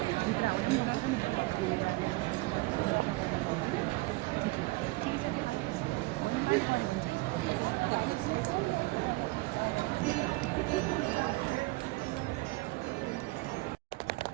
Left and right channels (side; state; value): left; quieter; 22.9 dB